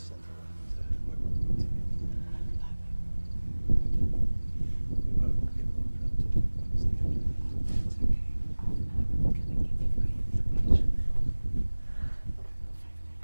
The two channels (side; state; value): both; inverted; correlation -1.00